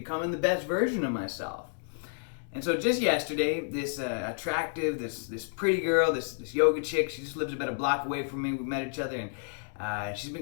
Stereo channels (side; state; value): right; silent; digital silence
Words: the best version of myself. And so just yesterday, this attractive, this pretty girl, this yoga chick, she just lives about a block away from me. We met each other, and she's